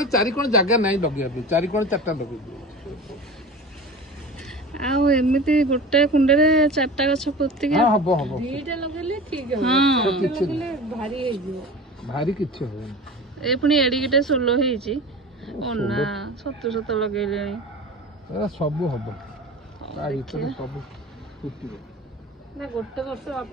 चारी कोन जगह नहीं लगे अभी चारी कोन चारटा लगे आउ एमिति गोटे कुंडे रे चारटा गछ पोती के हां हबो हबो दीटा लगेले ठीक है हां लगेले भारी हे जो भारी किछ हो ए पुनी एडी केटे सोलो हेछि ओना सत्तु सत्तु लगेलेनी ए सब हबो आ इतने सब फुटिबो ना गोटे वर्ष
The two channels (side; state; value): both; normal; correlation 0.34